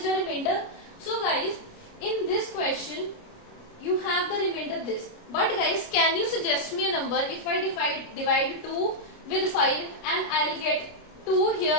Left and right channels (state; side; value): late; right; 29 ms